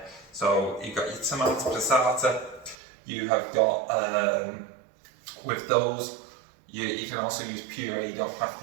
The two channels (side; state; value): left; drops out; at 2.8 s